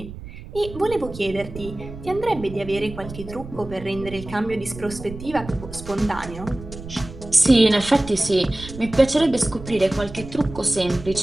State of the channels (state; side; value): noise; right; rumble, 13 dB below the sound